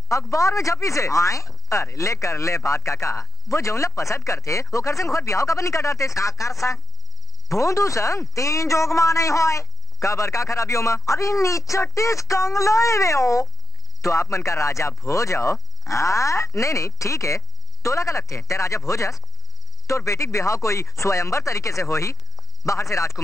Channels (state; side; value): normal; both; correlation 0.78